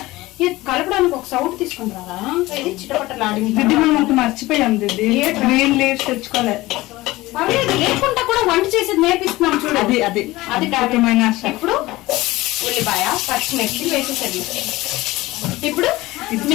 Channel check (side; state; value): right; quieter; 19.0 dB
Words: ఇది కలపడానికి ఒక సౌట్ తీసుకుని రారా, ఇది చిటపట్టలాడింది. మనం మర్చిపోయాం దిద్ది, గ్రీన్ లీవ్స్ తెచ్చుకోలేదు. లేకుండా కూడా వంట చేసేది నేర్పిస్తున్నాం చూడు. అది ఇప్పుడు ఉల్లిపాయ పచ్చిమిర్చి వేసేసరి. ఇప్పుడు